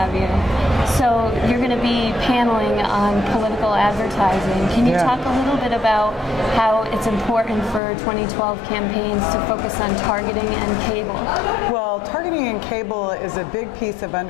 you. So you're going to be paneling on political advertising. Can you talk a little bit about how it's important for 2012 campaigns to focus on targeting and cable? Well, targeting and cable is a big piece of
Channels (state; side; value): drops out; right; at 7.8 s